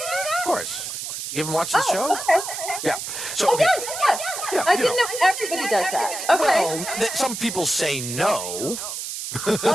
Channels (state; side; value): noise; right; hiss, 6 dB below the sound